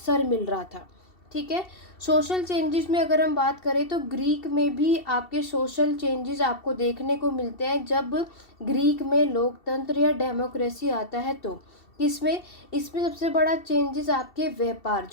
मिल रहा था। ठीक है। सोशल चेंजेस में अगर हम बात करें तो ग्रीक में भी आपके सोशल चेंजेस आपको देखने को मिलते हैं जब ग्रीक में लोकतंत्र या डेमोक्रेसी आता है तो किसमें, इसमें सबसे बड़ा चेंजेस आपके व्यापार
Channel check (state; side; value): late; right; 2.7 ms